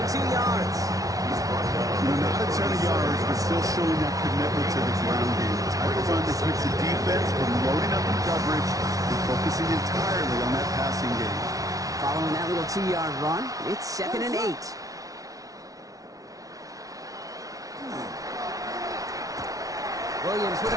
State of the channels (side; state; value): left; late; 0.17 ms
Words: 2 yards. Not a ton of yards, but still showing that commitment to the ground game. The type of run that keeps the defense from loading up in coverage and focusing entirely on that passing game. Following that little 2-yard run, it's 2nd and 8. Williams with